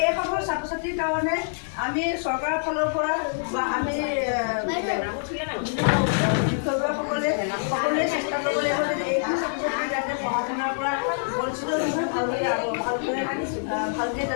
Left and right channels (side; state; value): right; silent; digital silence